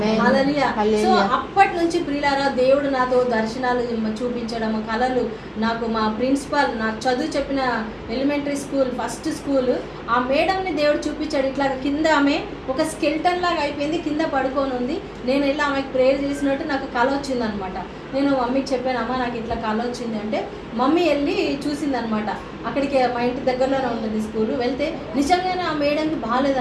హల్లెలూయా. సో అప్పటి నుంచి ప్రియులారా, దేవుడు నాతో దర్శనాలు చూపించడం, కళలు, నాకు మా ప్రిన్సిపల్ నాకు చదువు చెప్పిన ఎలిమెంటరీ స్కూల్ ఫస్ట్ స్కూల్ ఆ మేడంని దేవుడు చూపించాడు. ఇట్లా కింద ఆమె ఒక స్కెల్టన్ లాగా అయిపోయింది, కింద పడుకొని ఉంది. నేను వెళ్ళి ఆమెకు ప్రేయర్ చేసినట్టు నాకు కళ వచ్చిందనమాట. నేను మమ్మీకి చెప్పాను, అమ్మ నాకు ఇట్లా కళ వచ్చింది అంటే మమ్మీ వెళ్ళి చూసిందనమాట. అక్కడికి మా ఇంటి దగ్గరలోనే ఉంటుంది స్కూల్. వెళ్తే నిజంగానే ఆ మేడంకి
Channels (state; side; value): identical; both; correlation 1.00